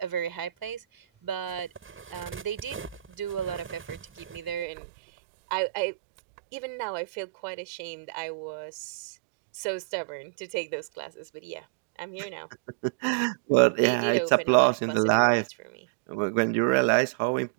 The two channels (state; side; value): drops out; left; at 4.7 s